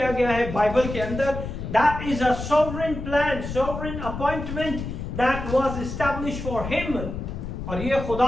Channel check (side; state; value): left; noise; rumble, 7 dB below the sound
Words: गया है बाइबल के अंदर. That is a sovereign plan, sovereign appointment that was established for him. और ये